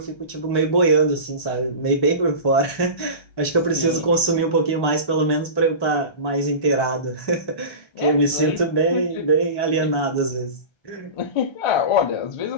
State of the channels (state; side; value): late; right; 1.3 ms